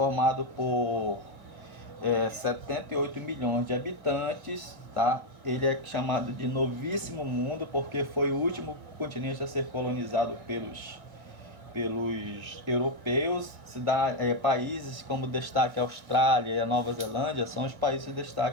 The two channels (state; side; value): late; left; 2.0 ms